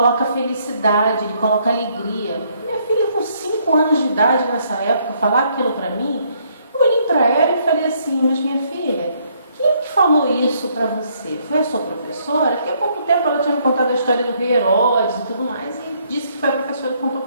felicidade, ele coloca alegria. Minha filha com 5 anos de idade nessa época, falar aquilo para mim, eu olhei para ela e falei assim: mas minha filha, quem que falou isso para você? Foi a sua professora? Porque há pouco tempo ela tinha me contado a história do rei Herodes e tudo mais, e disse que foi a professora que contou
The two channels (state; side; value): inverted; both; correlation -0.69